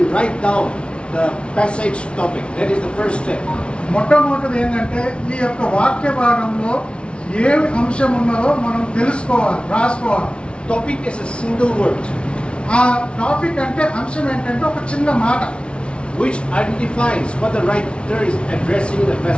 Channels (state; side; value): late; right; 0.058 ms